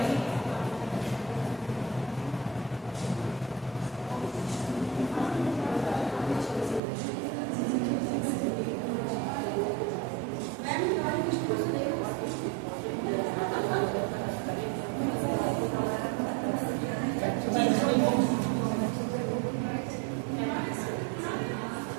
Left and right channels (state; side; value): drops out; left; at 6.8 s